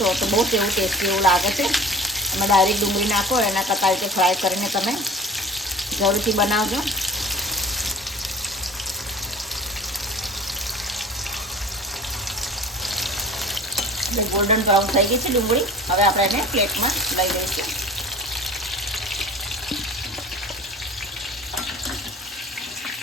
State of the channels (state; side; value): normal; both; correlation 0.41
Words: તો બહુ એવું ટેસ્ટી એવું લાગે છે। તમે ડાયરેક્ટ ડુંગળી નાખો એના કરતાં રીતે ફ્રાય કરીને તમે જરૂરથી બનાવજો। એટલે ગોલ્ડન બ્રાઉન થઈ ગઈ છે ડુંગળી। હવે આપણે એને પ્લેટમાં લઈ લઈશું।